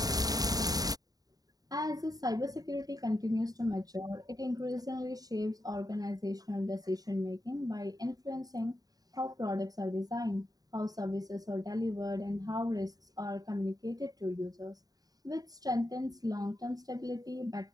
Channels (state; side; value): late; left; 0.18 ms